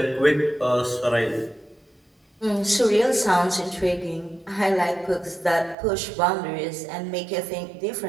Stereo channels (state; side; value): drops out; left; at 5.8 s